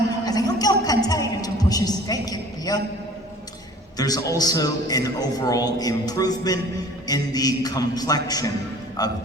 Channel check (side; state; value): both; normal; correlation 0.47